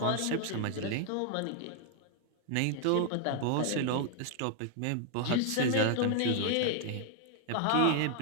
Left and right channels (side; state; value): both; different; correlation 0.00